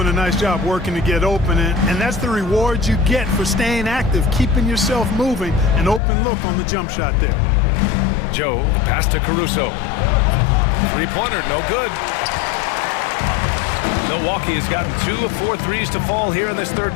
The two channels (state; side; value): drops out; right; at 6.0 s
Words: a nice job working to get open, and that's the reward you get for staying active, keeping yourself moving, an open look on the jump shot there. Joe, the pass to Caruso. Three-pointer, no good. Milwaukee has gotten 2 of 4 threes to fall here in this third